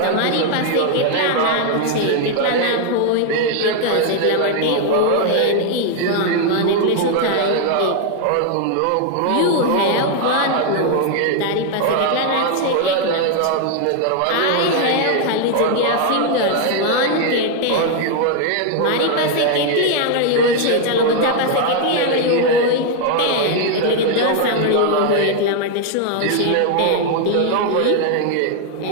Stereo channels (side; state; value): both; different; correlation 0.00